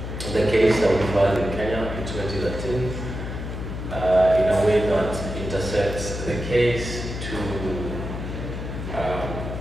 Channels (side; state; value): left; noise; hum, 6 dB below the sound